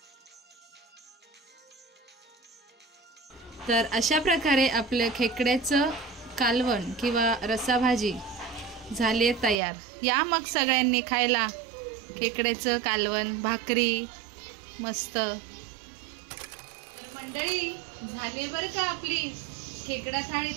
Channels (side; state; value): left; drops out; at 9.6 s